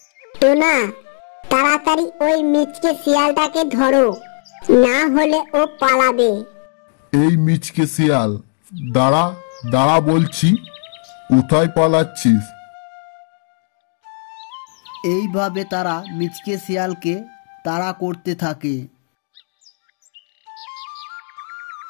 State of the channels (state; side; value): silent; right; 67 dB below the other